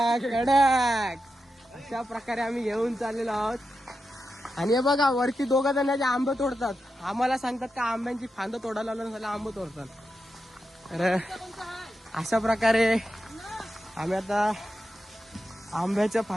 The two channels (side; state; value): both; normal; correlation 0.89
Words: कडक अशा प्रकारे आम्ही घेऊन चाललेलो आहोत. आणि हे बघा वरती दोघं जण जे आंबे तोडतात आम्हाला सांगतात का आंब्यांची फांद तोडायला लावून झालं आंबे तोडतात. तर अशा प्रकारे आम्ही आता आंब्याच्या